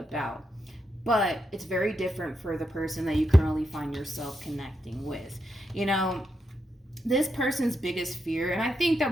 But it's very different for the person that you currently find yourself connecting with. You know, this person's biggest fear, and I think that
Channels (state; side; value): normal; both; correlation 0.83